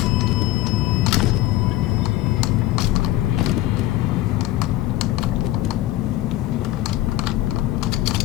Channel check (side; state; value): right; quieter; 15.8 dB